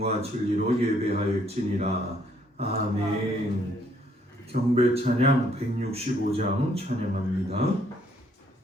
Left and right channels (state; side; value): normal; both; correlation 0.67